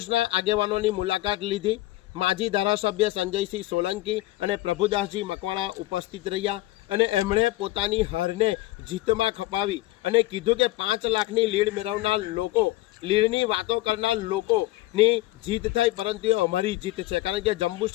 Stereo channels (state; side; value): quieter; right; 17.7 dB